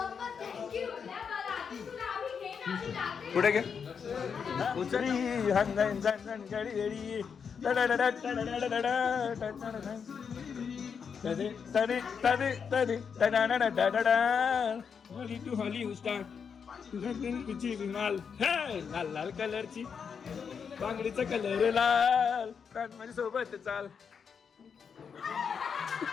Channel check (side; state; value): right; quieter; 6.5 dB